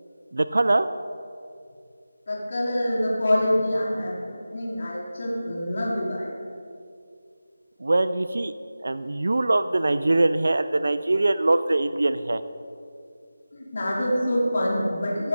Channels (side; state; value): both; inverted; correlation -0.96